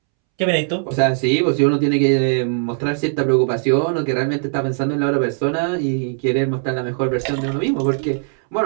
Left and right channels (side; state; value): left; silent; 66 dB below the other